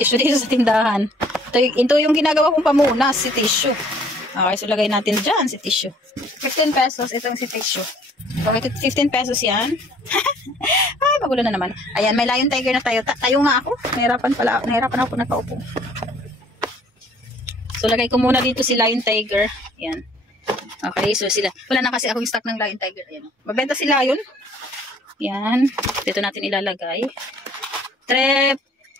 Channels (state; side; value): normal; both; correlation 0.57